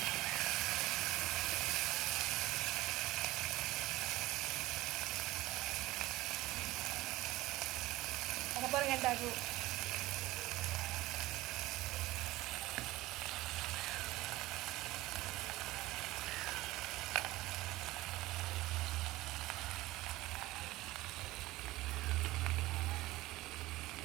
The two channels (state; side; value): quieter; left; 18.3 dB